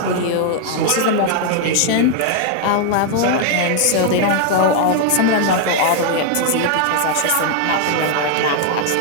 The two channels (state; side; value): different; both; correlation 0.00